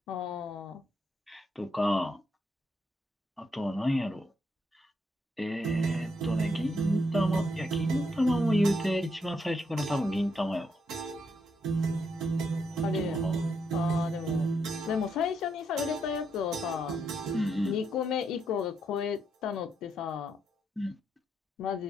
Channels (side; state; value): both; normal; correlation 0.78